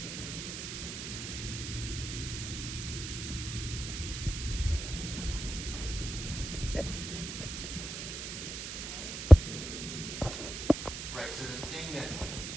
Right, so the thing that...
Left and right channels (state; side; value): noise; right; hiss, 7 dB below the sound